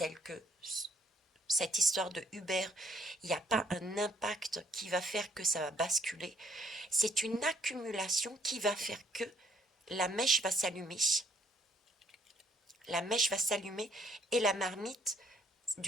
que cette histoire de Uber, il n'y a pas un impact qui va faire que ça va basculer. C'est une accumulation qui va faire que la mèche va s'allumer. La mèche va s'allumer et la marmite,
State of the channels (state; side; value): normal; both; correlation 0.65